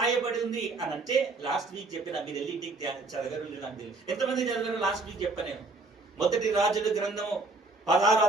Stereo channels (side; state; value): left; quieter; 3.4 dB